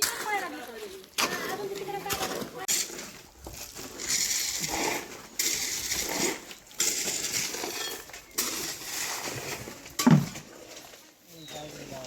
पाहायला लागली अजून तिकडे काय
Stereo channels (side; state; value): both; identical; correlation 1.00